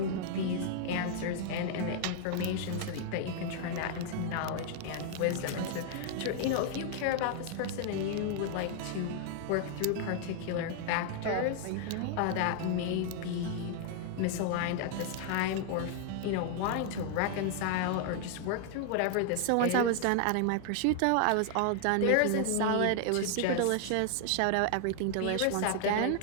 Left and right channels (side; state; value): both; different; correlation 0.00